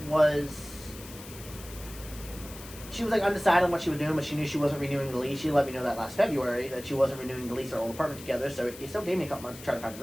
she was like undecided on what she was doing, but she knew she wasn't renewing the lease. She let me know that last February that she wasn't renewing the lease at our old apartment together, so it still gave me a couple months to try to find a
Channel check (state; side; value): noise; left; hiss, 15 dB below the sound